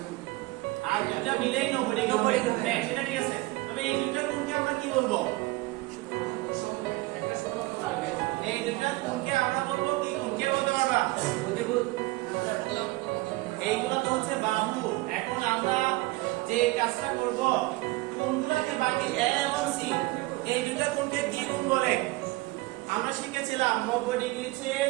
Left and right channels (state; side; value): quieter; left; 21.1 dB